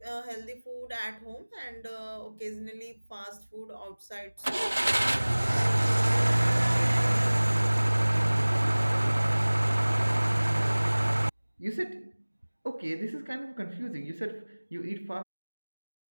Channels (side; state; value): both; inverted; correlation -1.00